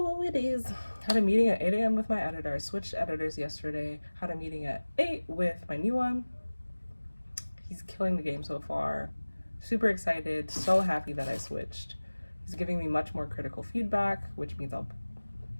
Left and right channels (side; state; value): both; inverted; correlation -1.00